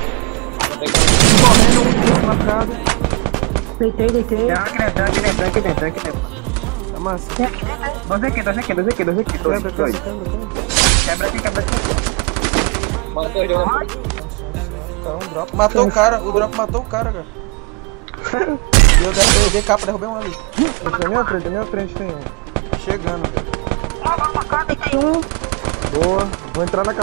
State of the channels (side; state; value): left; quieter; 32.1 dB